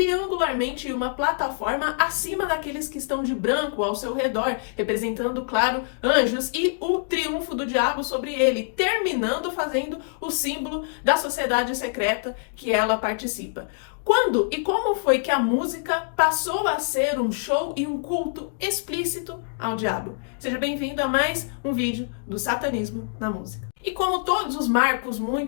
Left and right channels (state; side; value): silent; right; digital silence